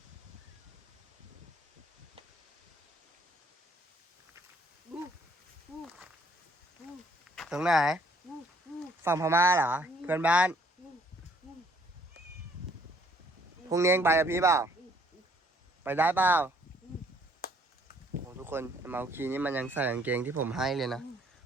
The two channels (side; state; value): both; normal; correlation 0.63